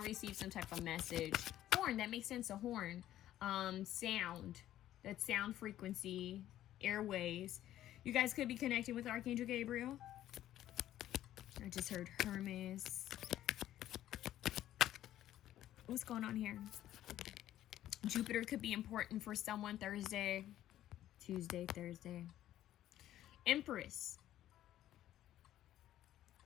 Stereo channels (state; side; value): quieter; right; 12.8 dB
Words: to receive some type of message. Horn. That makes sense. A horn. Sound. That's sound frequency. Airways. You guys could be connecting with Archangel Gabriel. I just heard Hermes. What's going on here? Jupiter could be important for someone Thursday, Tuesday, Thursday. Empress.